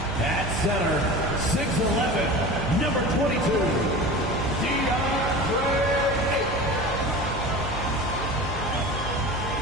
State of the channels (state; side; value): noise; right; hum, 8 dB below the sound